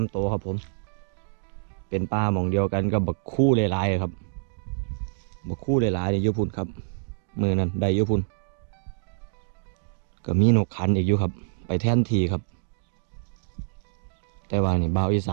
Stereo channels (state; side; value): silent; left; digital silence